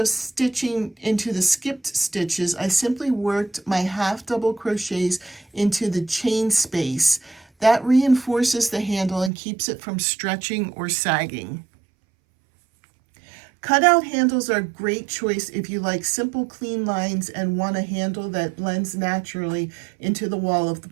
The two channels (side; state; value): left; drops out; at 9.3 s